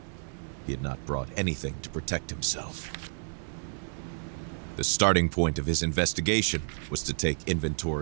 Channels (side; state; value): left; silent; digital silence